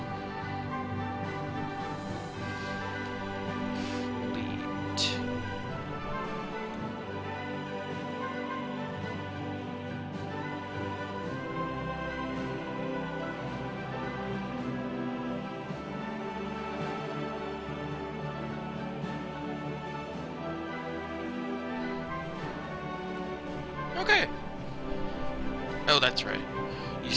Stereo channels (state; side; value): identical; both; correlation 1.00